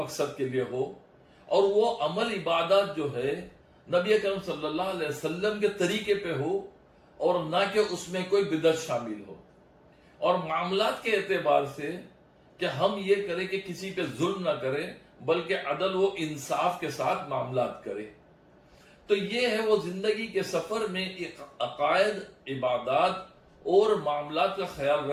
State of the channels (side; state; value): both; identical; correlation 1.00